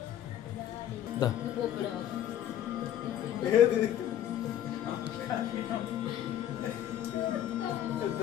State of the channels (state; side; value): quieter; right; 11.2 dB